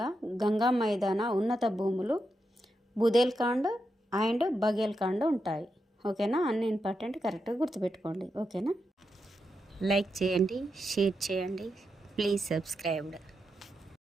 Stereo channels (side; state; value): both; normal; correlation 0.85